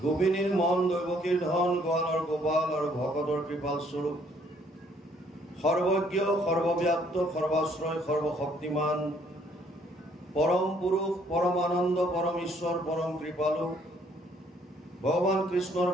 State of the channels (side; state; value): both; normal; correlation 0.65